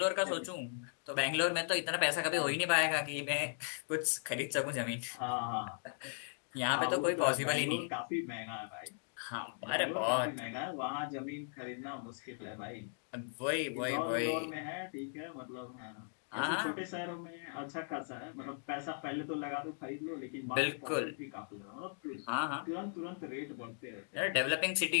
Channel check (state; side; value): silent; right; digital silence